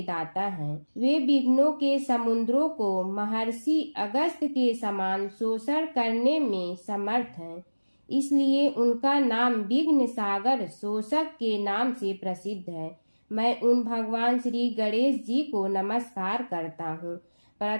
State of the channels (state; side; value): inverted; both; correlation -1.00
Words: दाता हैं। वे विघ्नों के समुद्रों को महर्षि अगस्त्य के समान शोषण करने में समर्थ हैं। इसलिए उनका नाम विघ्न सागर शोषक के नाम से प्रसिद्ध है। मैं उन भगवान श्री गणेश जी को नमस्कार करता हूँ।